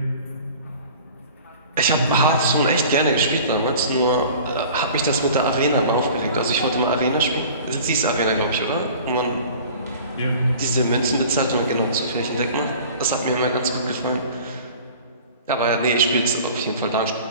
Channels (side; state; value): both; inverted; correlation -0.43